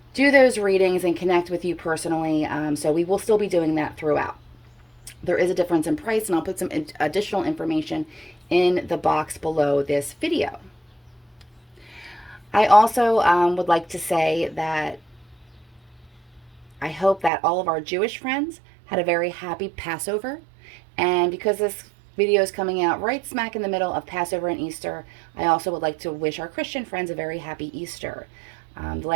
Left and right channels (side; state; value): left; drops out; at 17.3 s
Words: do those readings and connect with you personally. So we will still be doing that throughout. There is a difference in price, and I'll put some additional information in the box below this video. I also would like to say that I hope that all of our Jewish friends had a very happy Passover. And because this video is coming out right smack in the middle of Passover and Easter, I also would like to wish our Christian friends a very happy Easter. The